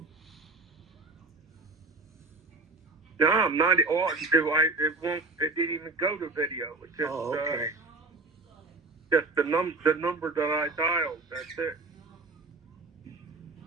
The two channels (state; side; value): quieter; left; 3.3 dB